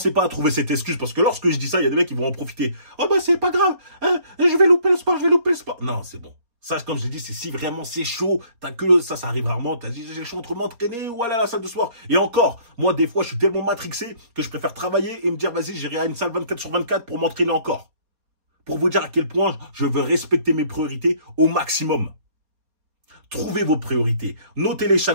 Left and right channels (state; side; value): late; left; 4.2 ms